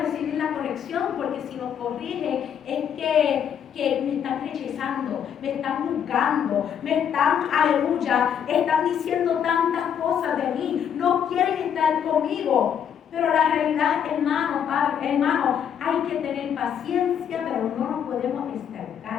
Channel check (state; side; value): quieter; right; 8.5 dB